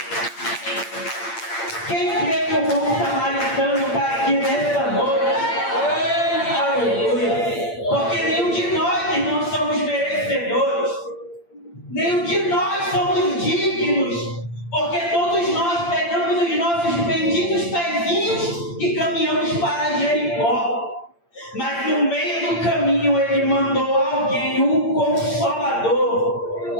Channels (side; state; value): right; late; 8.7 ms